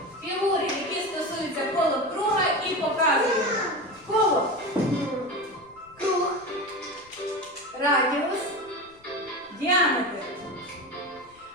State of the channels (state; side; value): noise; left; rumble, 30 dB below the sound